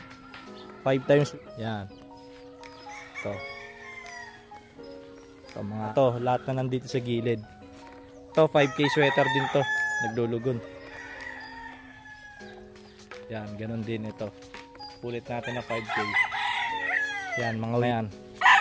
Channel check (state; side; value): identical; both; correlation 1.00